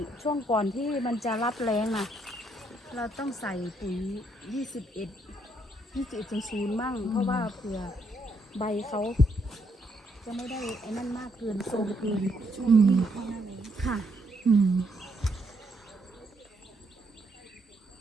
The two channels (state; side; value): normal; both; correlation 0.74